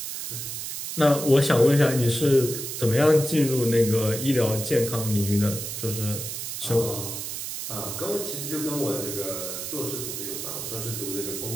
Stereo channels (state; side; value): noise; right; hiss, 6 dB below the sound